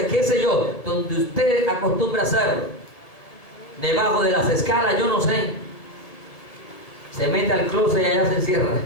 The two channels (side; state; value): right; late; 1.7 ms